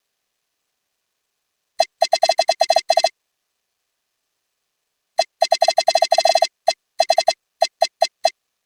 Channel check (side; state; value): both; identical; correlation 1.00